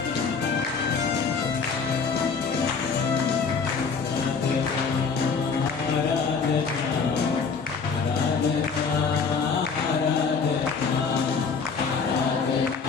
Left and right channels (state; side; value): quieter; right; 5.3 dB